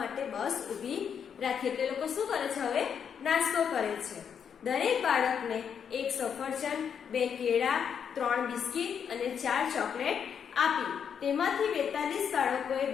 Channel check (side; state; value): right; quieter; 7.6 dB